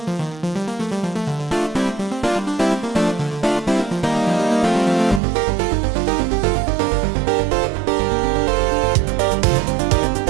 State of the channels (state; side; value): drops out; left; at 5.2 s